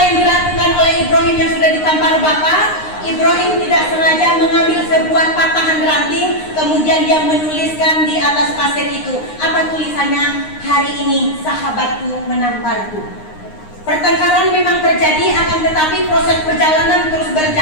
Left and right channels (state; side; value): late; right; 9.7 ms